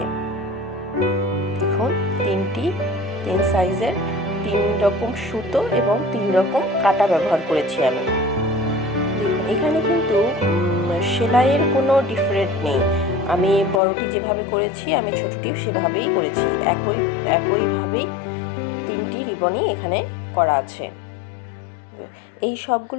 দেখুন, তিন সাইজের 3 রকম সুতো এবং 3 রকম কাটা ব্যবহার করেছি আমি। দেখুন, এখানে কিন্তু সেলাইয়ের কোনো ডিফারেন্ট নেই। আমি বড়টি যেভাবে করেছি আমি ছোটটিও সেভাবেই করেছি। একইভাবেই 3টি রিবনই এখানে করা আছে। এই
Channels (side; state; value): right; drops out; at 13.8 s